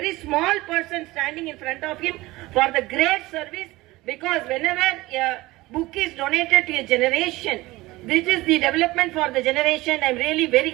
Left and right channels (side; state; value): left; quieter; 19.7 dB